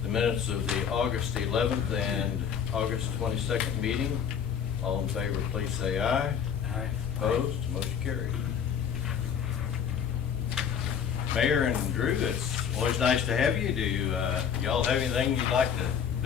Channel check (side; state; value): right; quieter; 7.7 dB